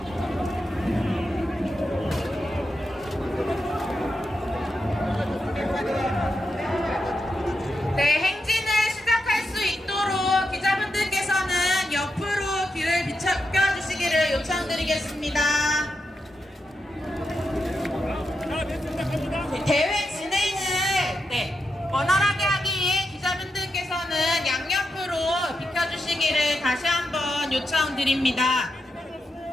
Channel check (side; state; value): both; normal; correlation 0.86